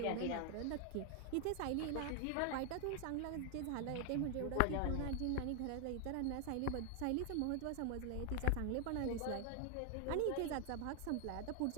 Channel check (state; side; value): different; both; correlation 0.00